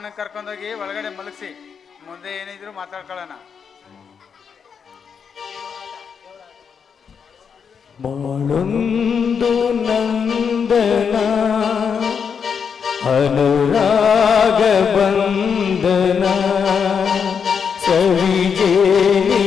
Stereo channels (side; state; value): right; quieter; 6.6 dB